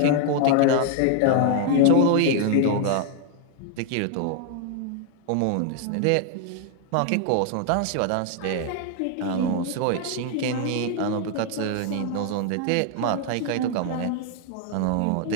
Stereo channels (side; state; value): both; different; correlation 0.00